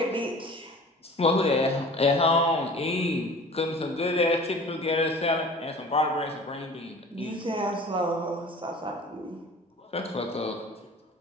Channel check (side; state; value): both; normal; correlation 0.43